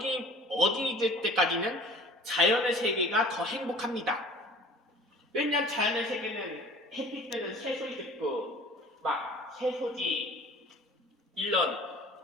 어린이들 때까지는 자연의 세계가 더 행복합니다. 왜냐면 자연의 세계는 햇빛 뜨는 새소리 듣고 막 새소리 일런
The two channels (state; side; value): normal; both; correlation 0.46